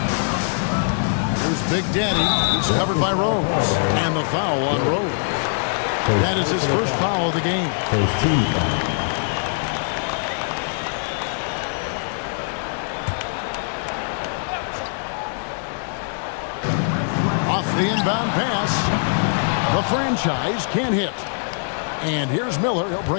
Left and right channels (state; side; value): silent; right; digital silence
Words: Here's Big Daddy. He's covered by Rose. And the foul on Rose. That is his first foul of the game. First team foul. Off the inbound pass. The franchise can't hit. And here's Miller. He'll